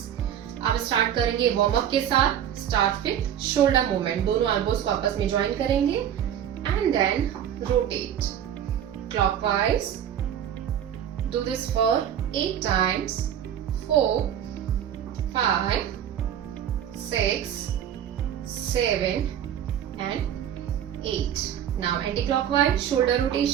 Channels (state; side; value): quieter; left; 9.9 dB